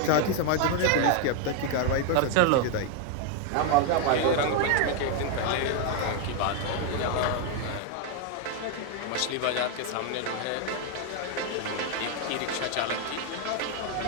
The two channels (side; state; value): both; different; correlation 0.01